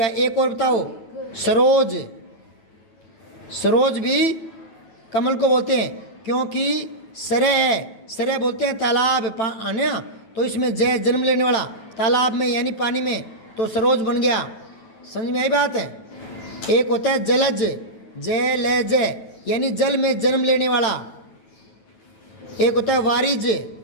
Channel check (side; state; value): right; late; 9.1 ms